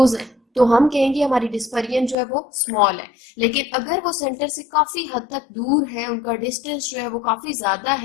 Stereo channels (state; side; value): drops out; right; at 2.1 s